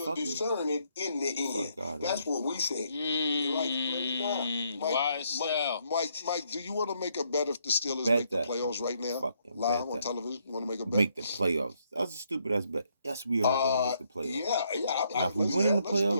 discern it in the end. That's what we say. Mike, do you want to make a bet if the Steelers make the playoffs right now? Live on television? You want to make a bet? Make the playoffs. That was a stupid ass bet. Yes, we are going to make the playoffs. Yeah. Now, if we win in the playoffs,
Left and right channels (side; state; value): both; inverted; correlation -0.73